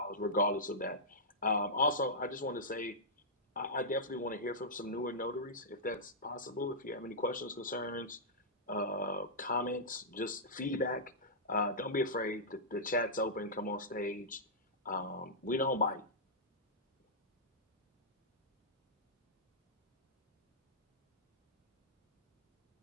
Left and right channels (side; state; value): both; normal; correlation -0.13